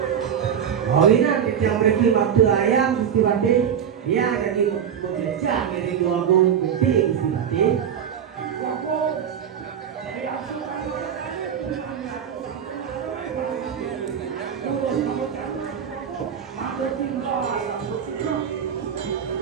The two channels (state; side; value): quieter; left; 8.3 dB